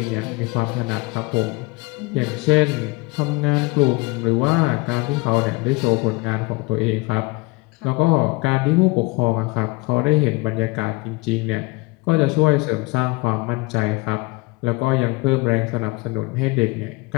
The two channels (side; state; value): right; quieter; 24.6 dB